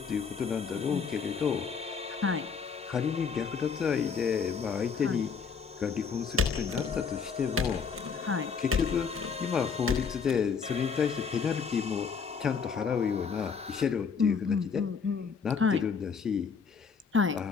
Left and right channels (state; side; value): quieter; right; 5.9 dB